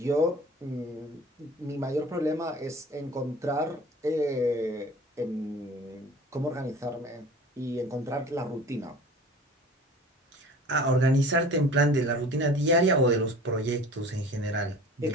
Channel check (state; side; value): normal; both; correlation 0.43